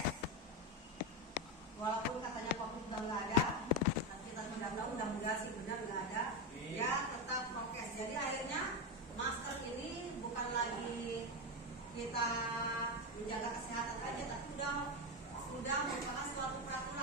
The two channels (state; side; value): normal; both; correlation 0.12